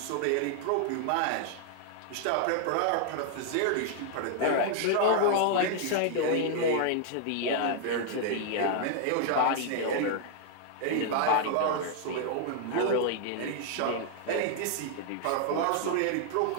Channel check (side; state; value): both; different; correlation 0.00